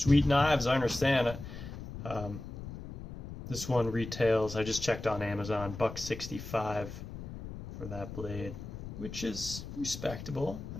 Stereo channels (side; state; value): left; noise; rumble, 10 dB below the sound